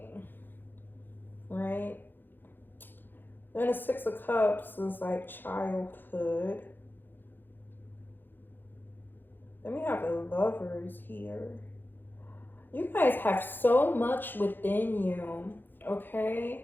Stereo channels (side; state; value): right; late; 0.095 ms